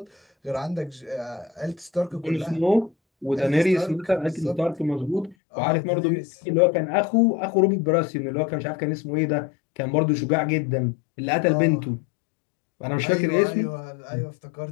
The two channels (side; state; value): right; drops out; at 5.4 s